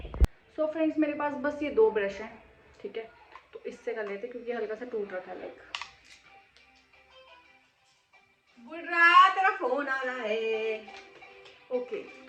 सो फ्रेंड्स मेरे पास बस ये 2 ब्रश हैं, ठीक है, तो इससे कर लेते क्योंकि हल्का सा टूट रहा था। लाइक बुर्रा तेरा फोन आ रहा है। ओके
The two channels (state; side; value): identical; both; correlation 1.00